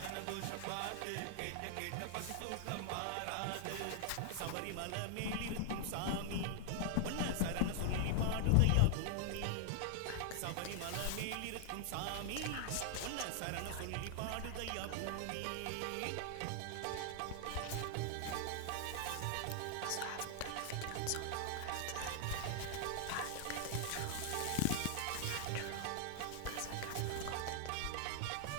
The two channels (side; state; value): both; different; correlation 0.00